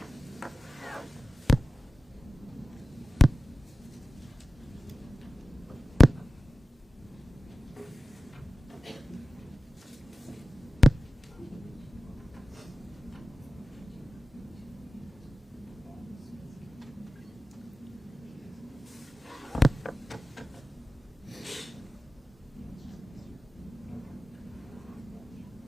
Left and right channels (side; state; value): both; normal; correlation 0.95